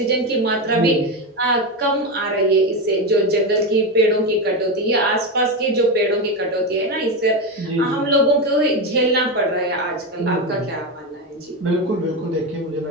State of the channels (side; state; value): both; normal; correlation 0.14